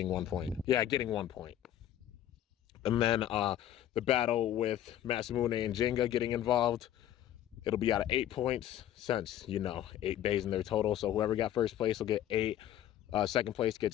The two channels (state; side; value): quieter; right; 11.8 dB